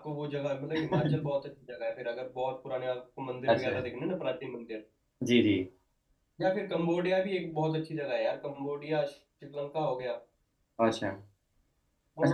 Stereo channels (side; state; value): both; identical; correlation 1.00